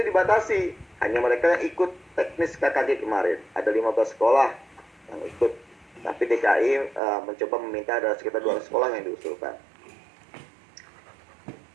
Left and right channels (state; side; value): drops out; left; at 7.0 s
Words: dibatasi, hanya mereka yang ikut teknis KKG kemarin. Ada 15 sekolah yang ikut. Tapi DKI mencoba meminta ada sekitar 200 sekolah yang diusulkan.